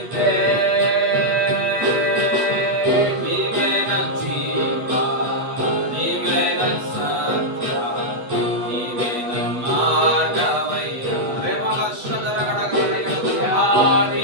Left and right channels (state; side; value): late; left; 8.2 ms